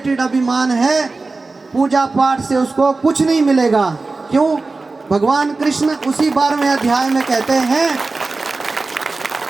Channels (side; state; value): left; quieter; 3.7 dB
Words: अभिमान है, पूजा पाठ से उसको कुछ नहीं मिलेगा। क्यों? भगवान कृष्ण उसी 12वें अध्याय में कहते हैं,